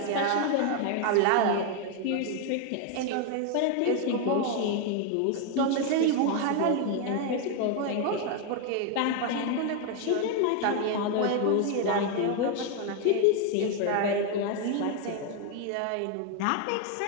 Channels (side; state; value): both; different; correlation 0.01